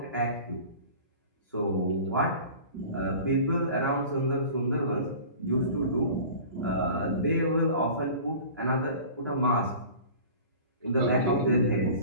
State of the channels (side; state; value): both; inverted; correlation -0.41